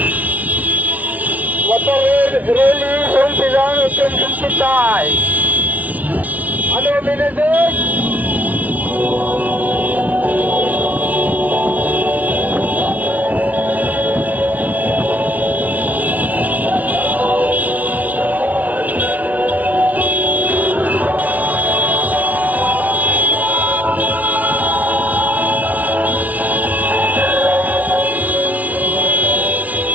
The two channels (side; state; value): left; late; 0.073 ms